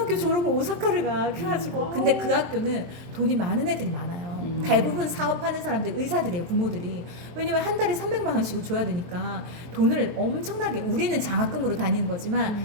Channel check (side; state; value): left; late; 23 ms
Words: 졸업을 오사카를 가. 그래가지고 근데 그 학교는 돈이 많은 애들이 많아요. 대부분 사업하는 사람들 의사들이에요. 부모들이. 왜냐면 한 달에 300만 원씩을 줘야 되니까 돈을 엄청나게 우리는 장학금으로 다니는